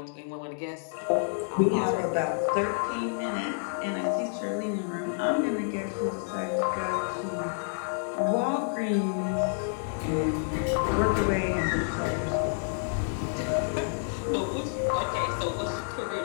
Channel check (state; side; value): silent; right; digital silence